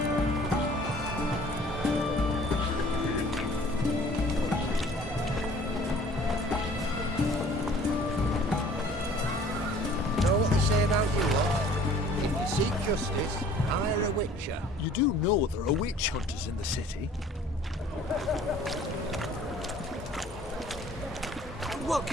Know what they say about you lot? If you seek justice, hire a witcher. You do know there are witch hunters in the city. What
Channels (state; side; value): normal; both; correlation 0.52